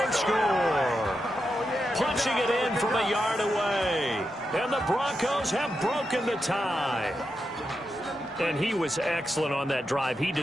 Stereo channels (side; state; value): both; normal; correlation 0.87